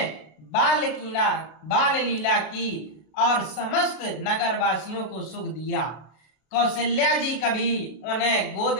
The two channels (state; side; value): late; right; 33 ms